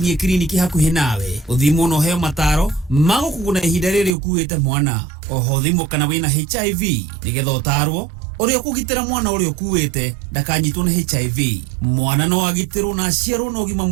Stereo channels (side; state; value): left; drops out; at 4.1 s